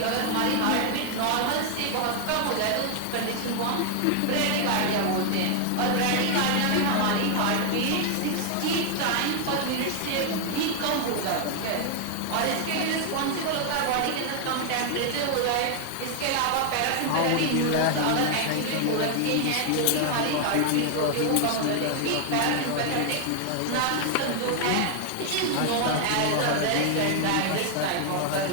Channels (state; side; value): different; both; correlation 0.00